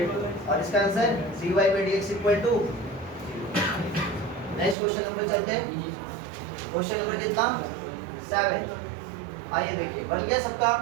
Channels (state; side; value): drops out; left; at 4.8 s